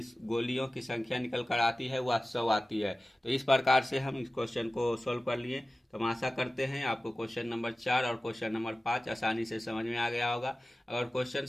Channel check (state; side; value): normal; both; correlation 0.96